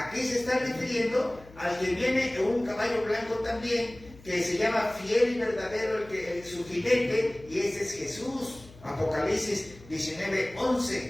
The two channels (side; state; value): left; noise; hum, 21 dB below the sound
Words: se está refiriendo al que viene en un caballo blanco también, que se llama fiel y verdadero, su jinete, y ese es Jesús. Apocalipsis 19,